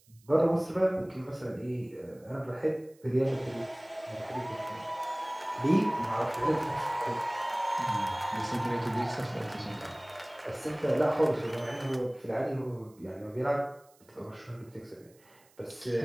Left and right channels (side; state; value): right; noise; hiss, 30 dB below the sound